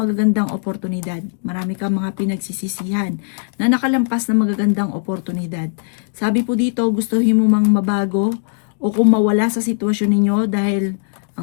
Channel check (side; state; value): right; silent; digital silence